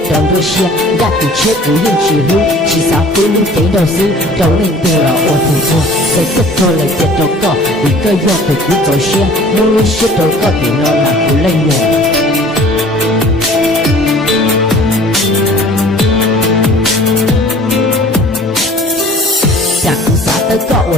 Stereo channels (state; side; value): normal; both; correlation 0.49